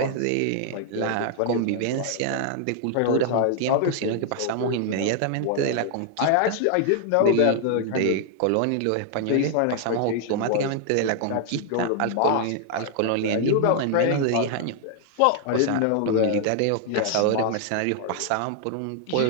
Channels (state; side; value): different; both; correlation 0.00